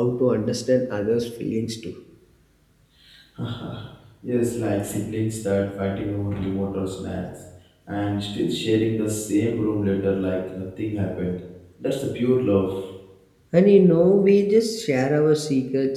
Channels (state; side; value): identical; both; correlation 1.00